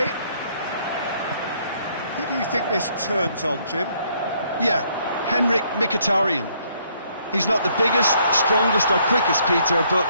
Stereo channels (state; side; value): inverted; both; correlation -0.67